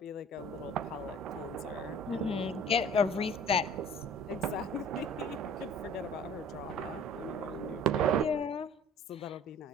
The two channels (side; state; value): both; normal; correlation 0.47